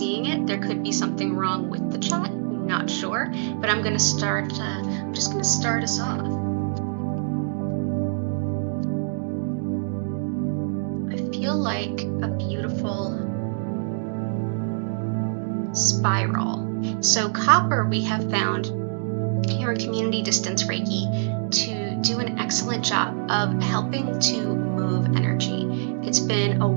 it. There could be something wrong with the chat, not sure, but I'm going to start, I'm just going to start us off. I feel like a beautiful spiral. So copper we have found here in Community Distance Reiki to do an excellent job of helping to move energy. It's been a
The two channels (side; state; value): left; silent; digital silence